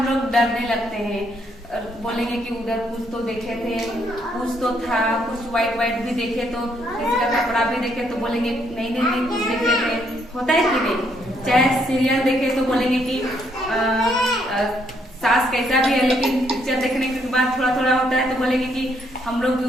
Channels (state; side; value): normal; both; correlation 0.72